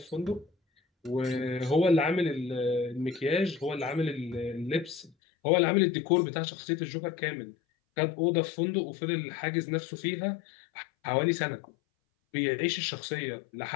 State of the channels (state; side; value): drops out; right; at 5.1 s